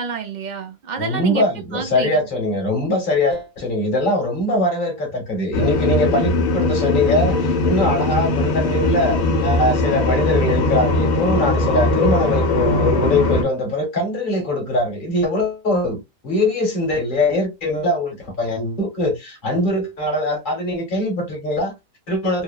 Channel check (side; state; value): both; normal; correlation 0.21